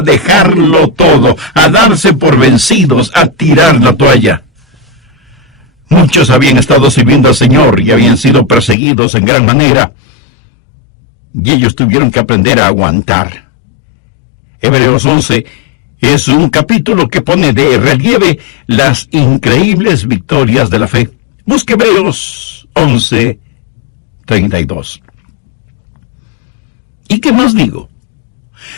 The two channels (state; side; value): drops out; right; at 8.8 s